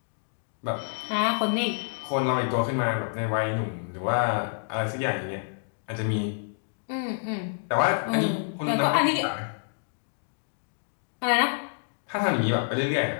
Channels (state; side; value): silent; right; digital silence